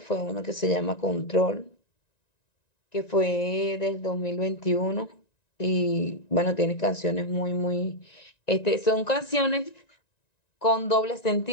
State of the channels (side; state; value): right; late; 1.9 ms